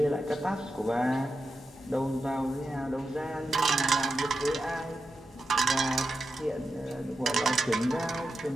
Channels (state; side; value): normal; both; correlation 0.88